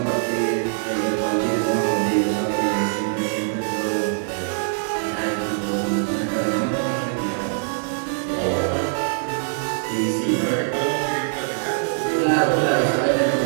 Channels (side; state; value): left; silent; 58 dB below the other